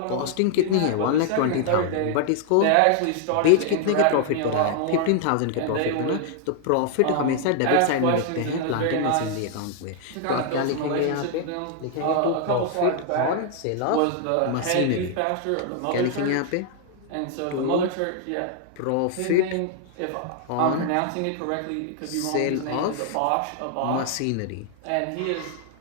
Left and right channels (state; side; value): different; both; correlation 0.00